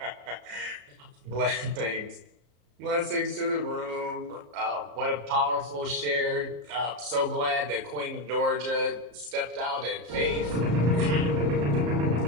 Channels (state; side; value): late; left; 34 ms